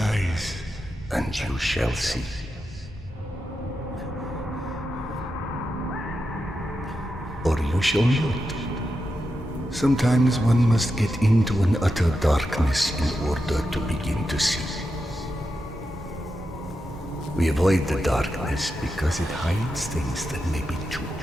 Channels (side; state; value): both; normal; correlation 0.88